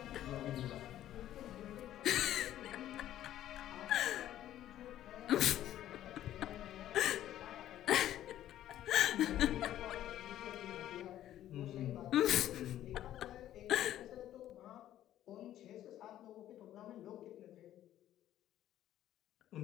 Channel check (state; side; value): quieter; right; 12.4 dB